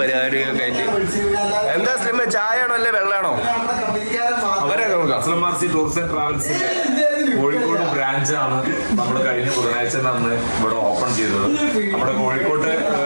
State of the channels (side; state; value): both; inverted; correlation -1.00